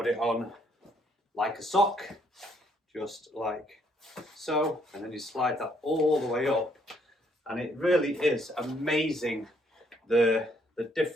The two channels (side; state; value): both; normal; correlation 0.69